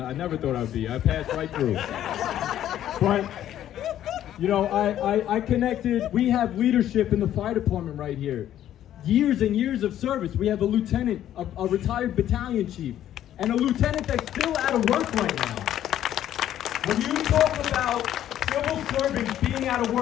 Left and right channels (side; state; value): right; quieter; 11.6 dB